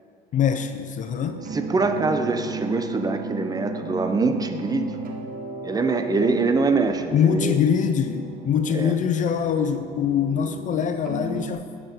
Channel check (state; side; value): normal; both; correlation 0.52